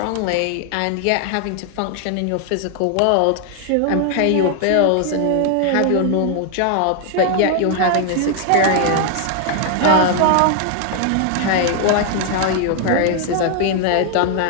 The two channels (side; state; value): both; different; correlation 0.00